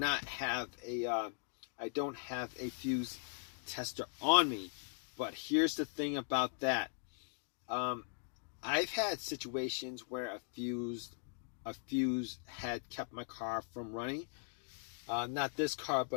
have a fuse tester on me. But here's the thing about that. I've had situations where a fuse had kept my car from running. Not this car,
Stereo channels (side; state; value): right; silent; digital silence